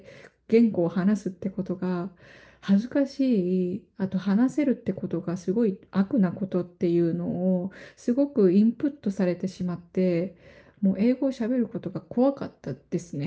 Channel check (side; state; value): both; identical; correlation 1.00